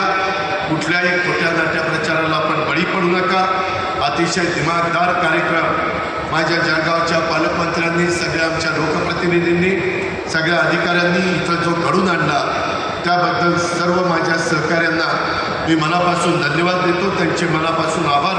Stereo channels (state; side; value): identical; both; correlation 1.00